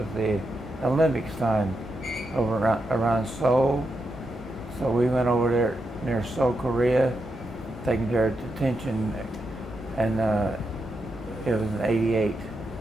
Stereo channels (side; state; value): both; normal; correlation 0.85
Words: the Olympics time over around Seoul. So we went over there near Seoul, Korea, taking their detention, and it was in 88.